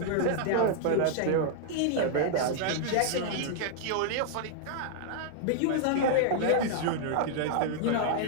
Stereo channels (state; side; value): different; both; correlation -0.01